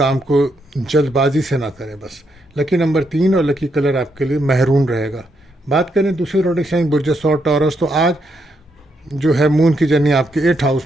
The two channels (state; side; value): normal; both; correlation 0.79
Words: کو جلد بازی سے نہ کریں بس۔ لکی نمبر 3 اور لکی کلر آپ کے لیے مہرون رہے گا۔ بات کریں دوسرے زوڈک سائن برج ثور ٹورس، تو آج جو ہے مون کی جرنی آپ کے 8th